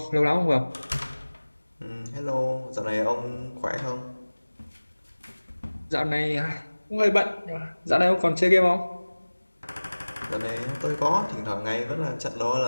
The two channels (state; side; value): inverted; both; correlation -1.00